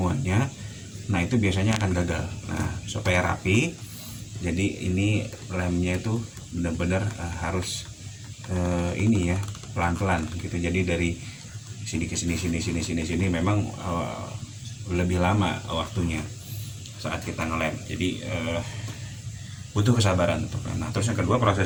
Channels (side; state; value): both; identical; correlation 1.00